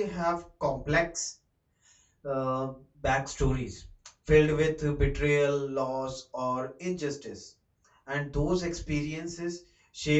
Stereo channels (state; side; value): identical; both; correlation 1.00